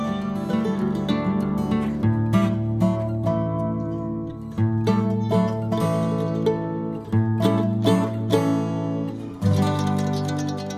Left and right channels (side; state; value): both; identical; correlation 1.00